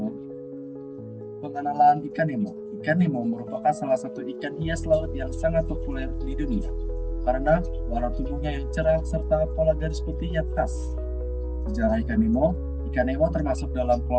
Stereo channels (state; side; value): identical; both; correlation 1.00